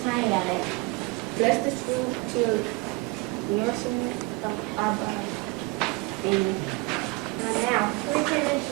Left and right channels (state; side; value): quieter; left; 25.4 dB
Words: plenty of it. Bless this food to nourishment of our body. Amen. Amen.